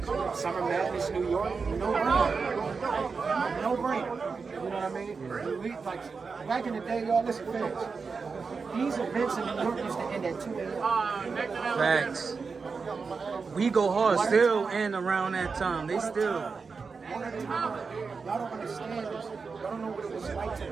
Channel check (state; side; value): quieter; left; 4.9 dB